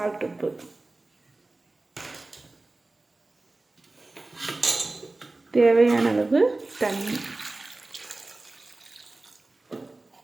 உப்பு, தேவையான அளவு தண்ணி.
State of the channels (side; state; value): left; quieter; 3.1 dB